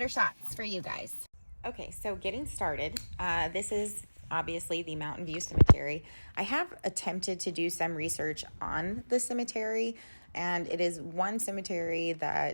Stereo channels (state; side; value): inverted; both; correlation -1.00